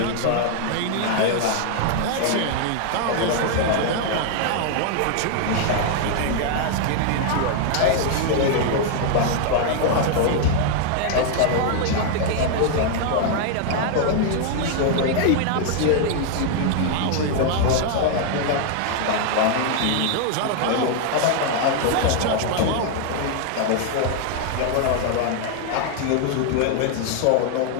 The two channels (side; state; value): both; different; correlation 0.00